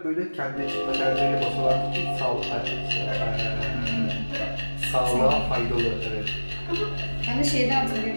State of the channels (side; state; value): both; inverted; correlation -1.00